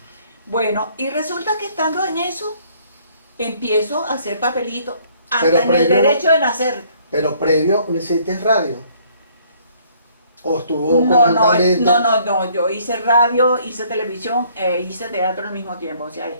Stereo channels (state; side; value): inverted; both; correlation -0.61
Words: Bueno, y resulta que estando en eso, empiezo a hacer papelitos, Pero hasta en el previo- derecho de nacer. Pero previo, ¿no hiciste radio? ¿O estuvo No, conjuntamente? no, yo hice radio, hice televisión, hice teatro al mismo tiempo, o sea,